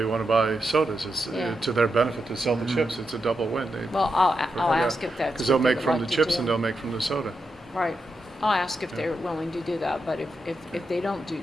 want to buy sodas. It's Yeah. to their benefit to sell the Mhm. chips. It's a double win. Well, I'll Yeah. ask if that's Because what they'll they make would from like the to chips do. and they'll make from the soda. Right. I'll ask if Yeah. they're willing to do that, but if they don't do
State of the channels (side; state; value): both; normal; correlation 0.85